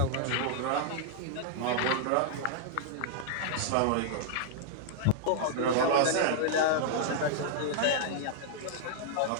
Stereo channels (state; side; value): different; both; correlation -0.01